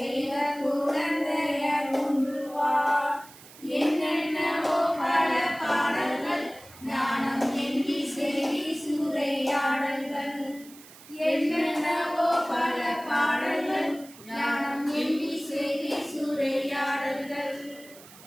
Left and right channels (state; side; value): noise; right; hiss, 20 dB below the sound